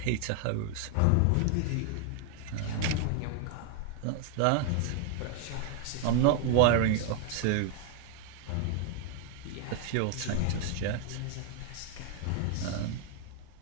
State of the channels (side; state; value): both; different; correlation 0.00